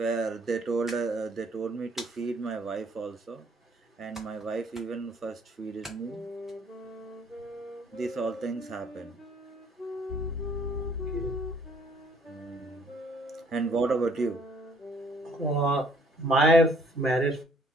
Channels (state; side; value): normal; both; correlation 0.61